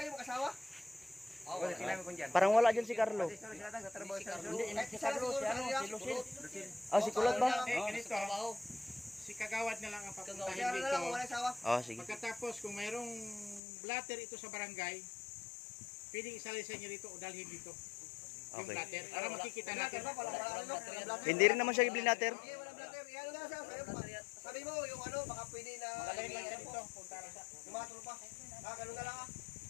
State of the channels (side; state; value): right; drops out; at 13.6 s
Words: mag-asawa? Parang wala dyan si Carlo. Kahit si Carlo, si ano, si Lucille. Si Kulot ba? Ganito, si Kagawad na lang ang Si papuntahin ano na lang, kung dito. wala asawa. Sige. Pagkatapos, kung mayroong blatter ito sa barangay, pwedeng isalisan niyo rito o dalhin dito. Yung Okay. blatter, para makikita natin. Hindi rin naman siya i-blatter. Hindi, wala blatter. Ano nga siya, sabi mo, yung ano, baka pwede na... Magaling lang siya dito. Punta lang siya. Yung mga trupa. Ganun na lang ah.